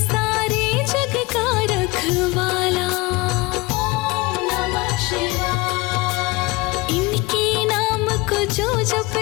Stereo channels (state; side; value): quieter; right; 23.6 dB